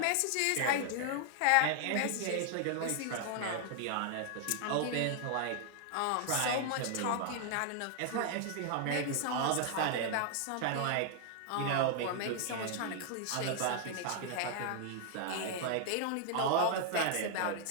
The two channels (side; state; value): both; different; correlation 0.00